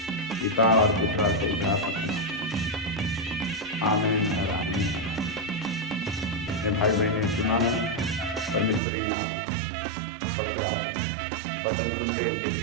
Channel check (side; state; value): left; drops out; at 8.8 s